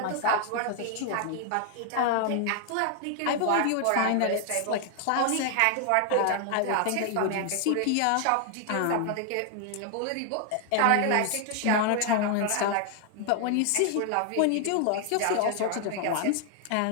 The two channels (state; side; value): different; both; correlation 0.00